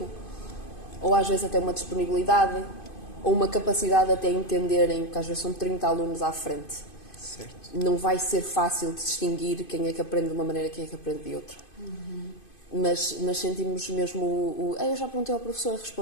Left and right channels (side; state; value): right; late; 2.5 ms